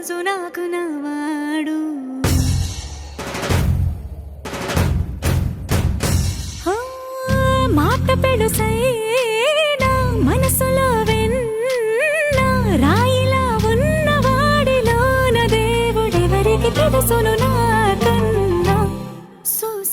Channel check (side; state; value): both; identical; correlation 1.00